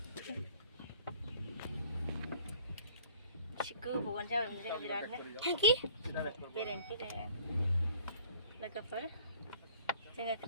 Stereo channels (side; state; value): both; inverted; correlation -0.53